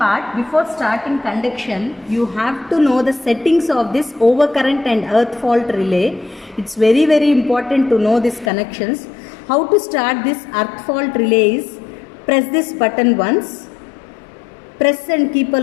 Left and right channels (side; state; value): right; drops out; at 8.5 s